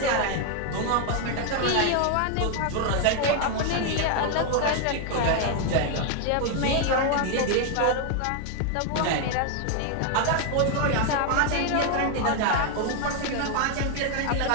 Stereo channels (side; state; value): both; different; correlation 0.00